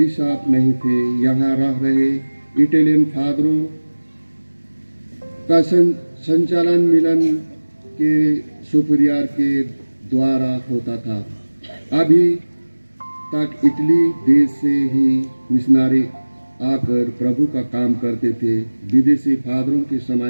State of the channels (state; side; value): inverted; both; correlation -1.00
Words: नहीं थे। यहाँ रह रहे इटालियन फादरों का संचालन मिलन के सुपरियर के द्वारा होता था। अभी तक इटली देश से ही मिशनरी आकर प्रभु का काम करते थे। विदेशी फादरों के